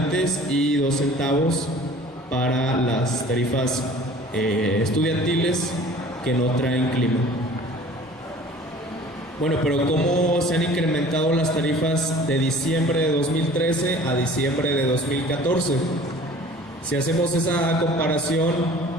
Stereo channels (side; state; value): both; normal; correlation 0.47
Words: y 2 centavos para las tarifas estudiantiles que no traen clima. Bueno, pero ¿cómo se han incrementado las tarifas de diciembre de 2013 a diciembre de 2014? Si hacemos esa comparación